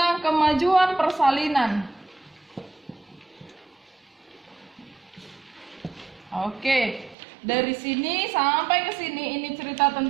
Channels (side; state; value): left; drops out; at 7.2 s